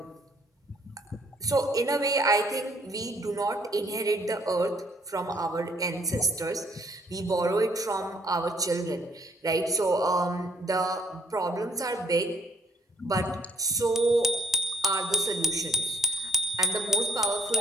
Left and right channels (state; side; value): normal; both; correlation 0.64